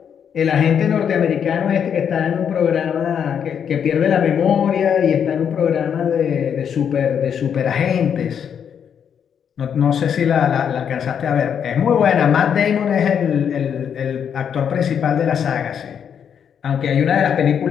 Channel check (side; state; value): right; quieter; 8.0 dB